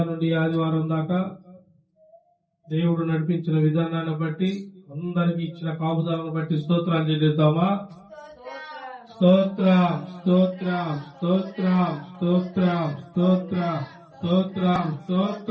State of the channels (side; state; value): both; identical; correlation 1.00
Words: నుండి ఆదివారం దాకా దేవుడు నడిపించిన విధానాన్ని బట్టి అందరికి ఇచ్చిన కాపుదాలను బట్టి స్తోత్రాలు చెల్లిద్దామా? స్తోత్రం స్తోత్రం స్తోత్రం స్తోత్రం స్తోత్రం స్తోత్రం